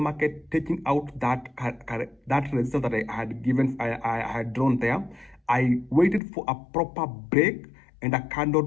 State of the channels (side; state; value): right; drops out; at 6.2 s